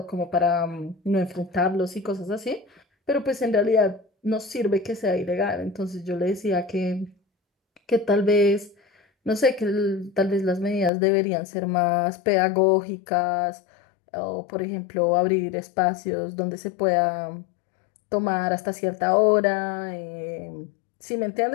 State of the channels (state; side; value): drops out; right; at 10.9 s